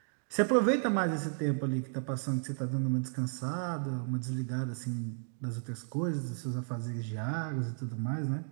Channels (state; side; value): silent; left; digital silence